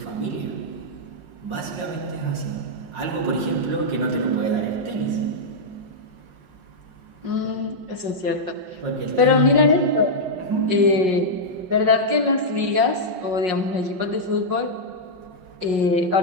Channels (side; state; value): left; late; 5.5 ms